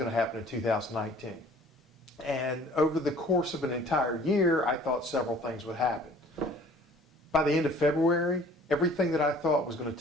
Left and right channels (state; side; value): normal; both; correlation 0.52